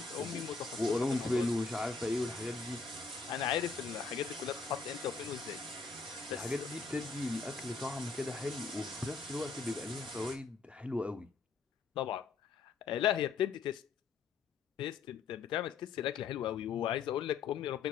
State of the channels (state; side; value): quieter; right; 4.8 dB